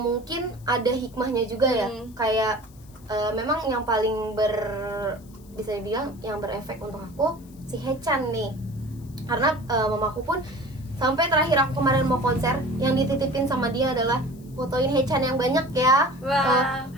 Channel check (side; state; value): left; noise; hiss, 27 dB below the sound